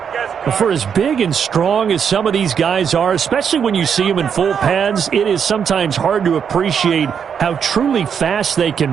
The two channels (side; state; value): left; quieter; 7.4 dB